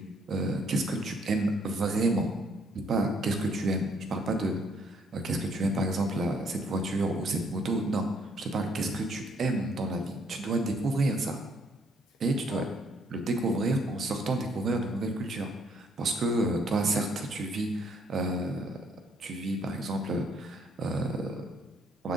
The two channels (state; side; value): normal; both; correlation 0.67